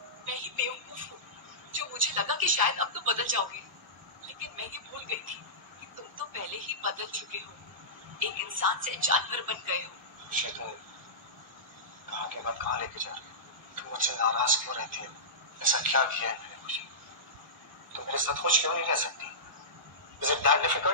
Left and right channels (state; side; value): normal; both; correlation -0.18